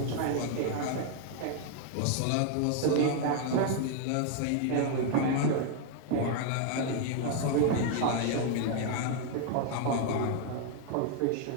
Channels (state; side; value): different; both; correlation 0.00